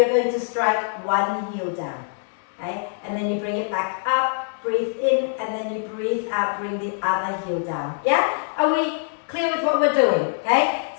going to strike one heel down, okay? And then you bring it back up. Breathe in, and then you breathe out, bring the other heel down. Yeah? Are we clear with what we're doing? Okay?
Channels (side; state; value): right; silent; digital silence